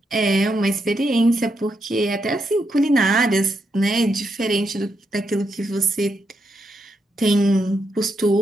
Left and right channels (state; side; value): normal; both; correlation 0.81